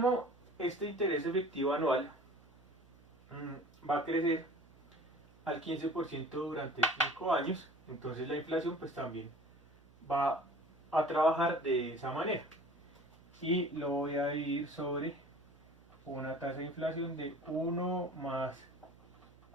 este interés efectivo anual va a crecer al 15% durante 5 años, entonces la inflación pues también va a trabajar de esa manera. Y lo voy a dividir sobre una tasa de inflación de 1 más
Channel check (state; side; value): noise; right; hum, 26 dB below the sound